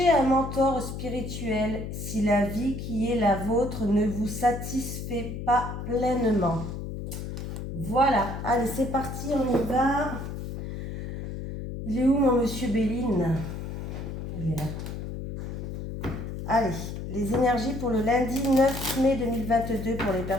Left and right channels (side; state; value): left; noise; hum, 6 dB below the sound